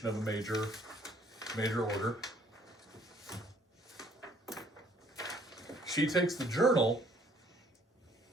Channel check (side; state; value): both; normal; correlation 0.61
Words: of a major order. She takes the journal